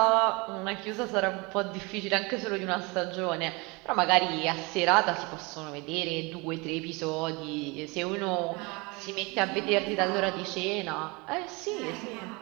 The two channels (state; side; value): quieter; left; 26.8 dB